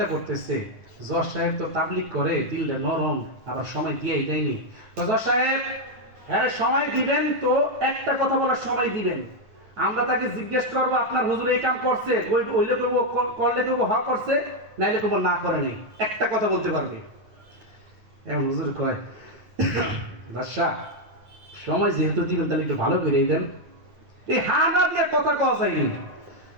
করতেছে, জজ সাহেব তো তাবলিগ করে, দিলটা নরম, আবার সময় দিয়েই দেয়নি। জজ সাহেব হ্যাঁ সময় দিবেন তো, একটা কথা বলার সময় দিবেন। আমরা তাকে জিজ্ঞেস করবো আপনার হুজুর এই কাম করছে, হইলে করবো, করলে করবো হ করছে, নাইলে করবো না করে নাই, একটা কথা বলতে পারবে। এখন হুজুর কয় বাদশা সময় যেহেতু দিবেন তাহলে একটু ভালো করে দেন। এই হা না দিয়ে কথা কওয়া যায়নি।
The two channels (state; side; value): late; left; 9.6 ms